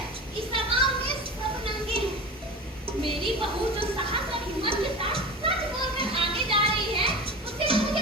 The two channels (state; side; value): normal; both; correlation 0.31